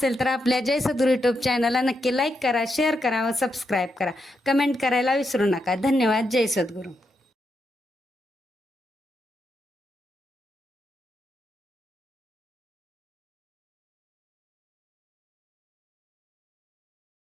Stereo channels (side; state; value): both; normal; correlation 0.83